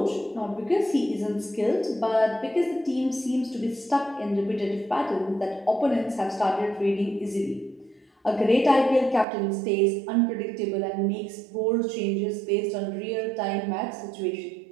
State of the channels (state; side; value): drops out; left; at 9.2 s